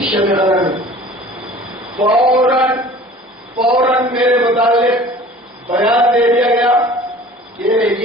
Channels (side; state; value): both; normal; correlation 0.46